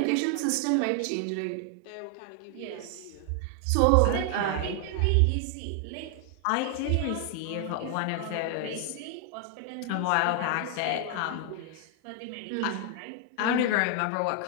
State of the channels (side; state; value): both; different; correlation 0.00